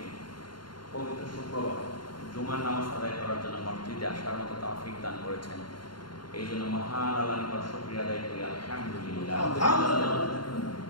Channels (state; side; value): late; right; 0.72 ms